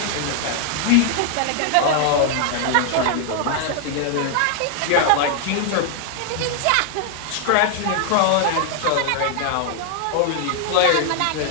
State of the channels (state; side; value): different; both; correlation 0.00